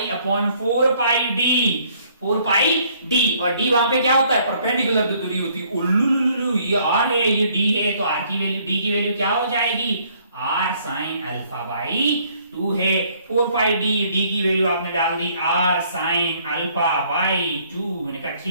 upon 4 pi D, 4 pi D. और डी वहां पे क्या होता है? परपेंडिकुलर जो दूरी होती है। उल्लू, ये आर है, ये डी है, तो आर की वैल्यू, डी की वैल्यू क्या हो जाएगी? आर साइन अल्फा बाई 2 है। 4 पाई डी, डी की वैल्यू आपने डाल दी आर साइन अल्फा बाई 2। मैंने कहा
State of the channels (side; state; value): both; inverted; correlation -0.63